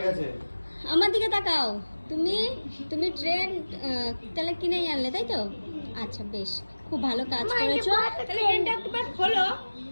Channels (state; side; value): inverted; both; correlation -1.00